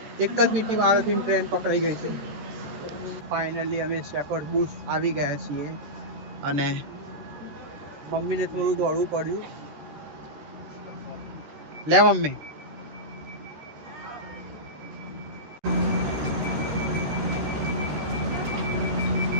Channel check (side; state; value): left; late; 13 ms